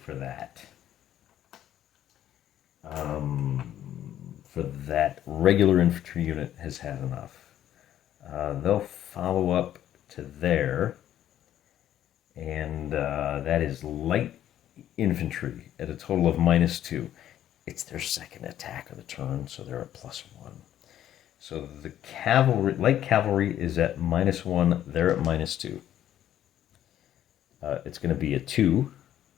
that. For that, regular infantry unit has had enough. They'll follow up to there. And that is light infantry at a total of -2. It's their second attack of the turn, so they're at +1. So the cavalry, light cavalry is at -1. They're at -2. It's going to be a 2.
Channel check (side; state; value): right; quieter; 11.5 dB